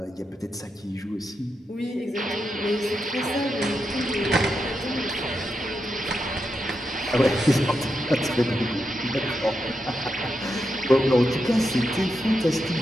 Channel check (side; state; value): both; normal; correlation 0.86